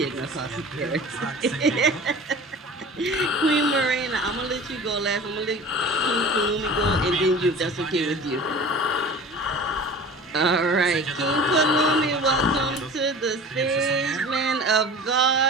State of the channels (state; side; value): normal; both; correlation 0.39